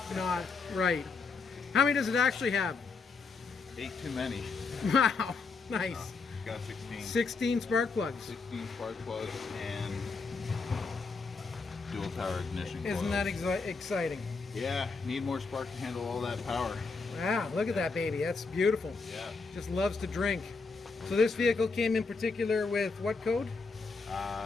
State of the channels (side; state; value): right; quieter; 4.4 dB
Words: not right. How many does it actually have? 8 too many. Wow, nice. Got 16. 16 spark plugs. 16 spark plugs and dual tower ignition. Isn't that exciting? Yeah, need more spark to handle all that power. Wow, look at that baby. That's beautiful. Yeah. Just loves to drink. So this vehicle came in particular with what code?